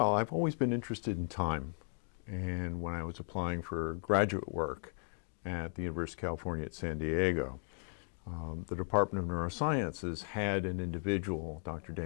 I've always been interested in time, and when I was applying for graduate work at the University of California at San Diego, the Department of Neurosciences had an individual, Dr.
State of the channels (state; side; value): silent; right; digital silence